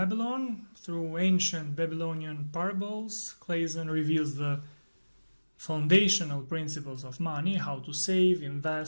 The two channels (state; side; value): inverted; both; correlation -1.00